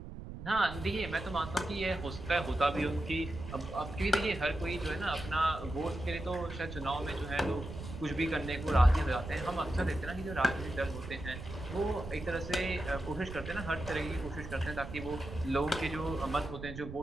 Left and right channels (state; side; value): noise; right; rumble, 10 dB below the sound